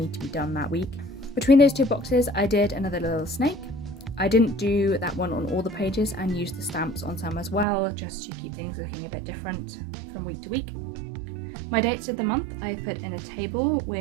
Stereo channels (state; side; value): drops out; left; at 7.7 s